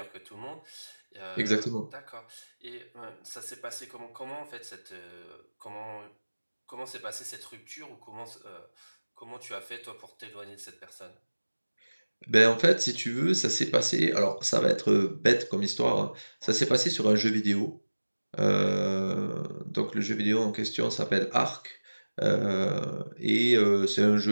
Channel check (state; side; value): inverted; both; correlation -1.00